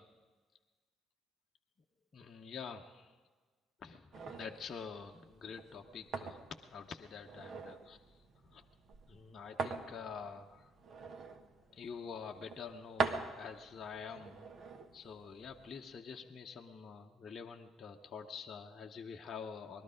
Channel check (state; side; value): normal; both; correlation 0.66